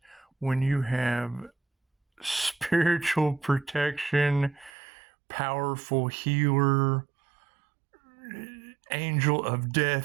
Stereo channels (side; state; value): left; drops out; at 4.7 s